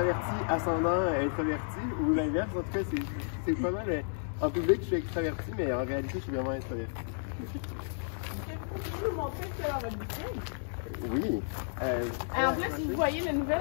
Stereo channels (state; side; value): silent; right; digital silence